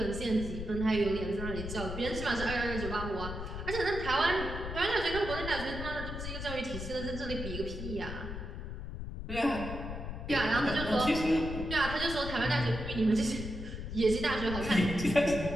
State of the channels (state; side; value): noise; left; rumble, 7 dB below the sound